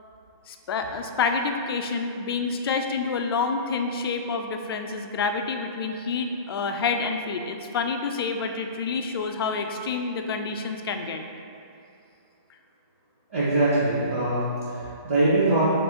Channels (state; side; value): inverted; both; correlation -0.38